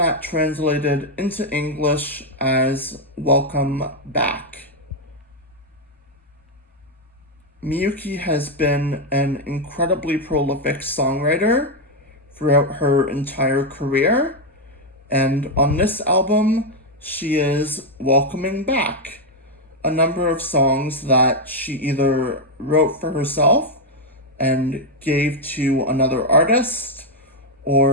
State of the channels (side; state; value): both; normal; correlation 0.02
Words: translated into English as Welcome Back. Miyuki has been an incredibly prolific songwriter throughout her entire career, and on this album, she is welcoming back a number of songs that she either wrote for herself and gave to another artist,